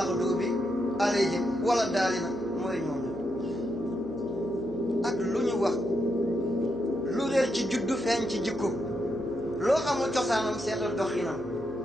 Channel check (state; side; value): noise; right; hum, 18 dB below the sound